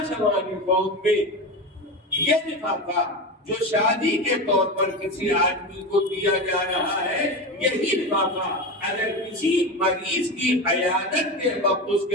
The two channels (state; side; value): normal; both; correlation 0.22